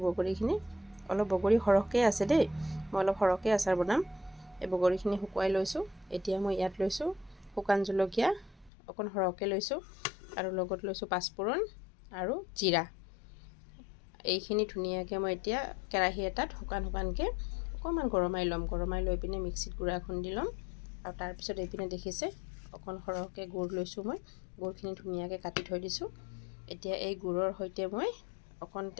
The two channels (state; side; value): drops out; right; at 8.7 s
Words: বগৰীখিনি। অলপ বগৰী সৰহকৈ আছে দেই, মই অলপ সৰহকৈ আচাৰ বনাম। এই বগৰীখিনি শুকুৱাই লৈছোঁ। এতিয়া মই ইয়াত লৈছোঁ শুকান জলকীয়া অকণ সৰহকৈ লৈছোঁ আৰু লগত লৈছোঁ পাঁচফোৰণ আৰু জিৰা। এইখিনি ধুনীয়াকৈ মই এতিয়া কেৰাহী এটাত শুকানকৈ অকণমান গৰমাই ল'ম। গৰমাই লৈ পিনে মিক্সিত গুড়া খুন্দি ল'ম। আৰু তাৰপিছত এইপিনে দেখিছে অকণ সৰহকৈ গুড় লৈছোঁ মই। গুড়খিনি ধুনীয়াকৈ কাটি থৈ দিছোঁ। এতিয়া এই গুড়ৰ সৈতে মই অকণ